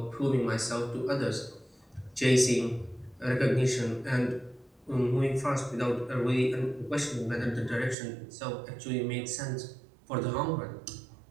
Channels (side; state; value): left; drops out; at 8.0 s